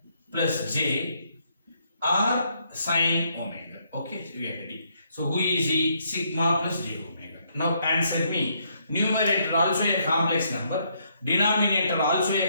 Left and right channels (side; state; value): both; inverted; correlation -0.72